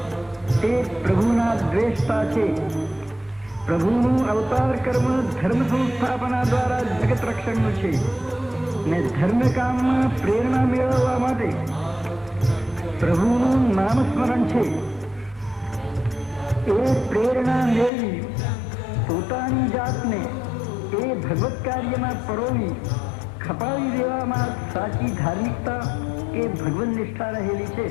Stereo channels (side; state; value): right; drops out; at 17.9 s